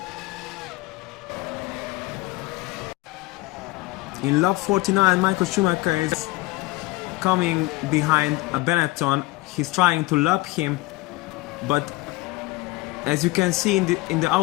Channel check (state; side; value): quieter; right; 20.9 dB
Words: In lap 49, Michael Schumacher is coming behind a Benetton. He's trying to lap him, but as you can see in the